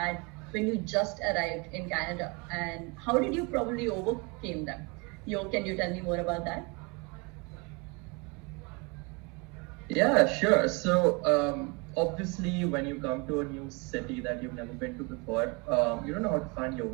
when you just arrived in Canada, and how did you probably overcame them? Can you tell me more about that? Yeah, sure. So obviously, when you come to a new city that you've never been to before, you don't know how to find your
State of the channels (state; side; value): quieter; left; 29.9 dB